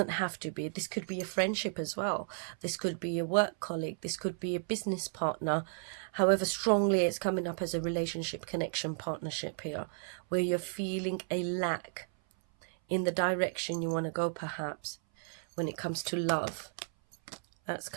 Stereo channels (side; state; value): left; silent; 55 dB below the other